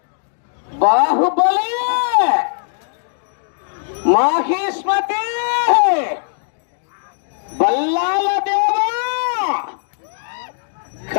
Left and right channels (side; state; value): right; silent; digital silence